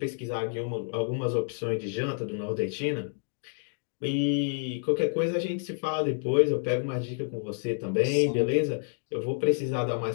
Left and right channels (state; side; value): silent; right; 59 dB below the other